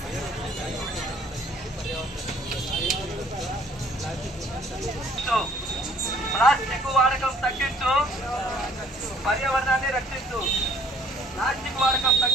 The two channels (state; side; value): normal; both; correlation 0.60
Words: ప్లాస్టిక్ వాడకం తగ్గించు, పర్యావరణాన్ని రక్షించు. ప్లాస్టిక్ వాడకం